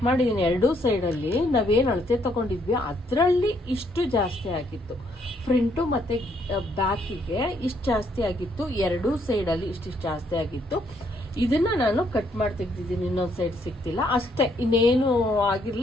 ಮಾಡಿದ್ದೀನಿ, ಎರಡೂ ಸೈಡಲ್ಲಿ ನಾವೇನು ಅಳತೆ ತಗೊಂಡಿದ್ವಿ ಅದರಲ್ಲಿ ಇಷ್ಟು ಜಾಸ್ತಿ ಆಗಿತ್ತು. ಫ್ರಂಟು ಮತ್ತು ಬ್ಯಾಕಿಗೆ ಇಷ್ಟು ಜಾಸ್ತಿ ಆಗಿತ್ತು, ಎರಡೂ ಸೈಡಲ್ಲಿ ಇಷ್ಟು ಜಾಸ್ತಿ ಆಗಿತ್ತು. ಇದನ್ನ ನಾನು ಕಟ್ ಮಾಡಿ ತೆಗ್ದಿದ್ದೀನಿ, ಇನ್ನೊಂದು ಸೈಡ್ ಸಿಗ್ತಿಲ್ಲ ಅಷ್ಟೇ, ಇನ್ನೇನು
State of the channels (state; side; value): normal; both; correlation 0.70